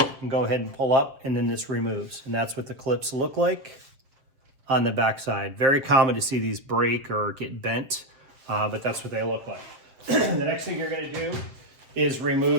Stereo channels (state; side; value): late; left; 7.5 ms